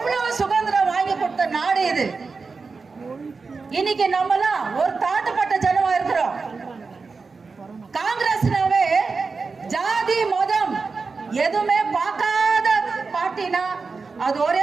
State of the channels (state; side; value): quieter; left; 4.5 dB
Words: சுதந்திரம் வாங்கி கொடுத்த நாடு இது. இன்னைக்கு நம்மலாம் ஒரு தாழ்த்தப்பட்ட ஜனமா இருக்கிறோம். காங்கிரஸ்னாவே ஜாதி மதம் எதுவுமே பார்க்காத பார்ட்டினா அது